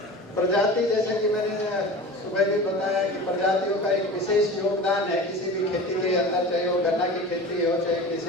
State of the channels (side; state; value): both; normal; correlation 0.35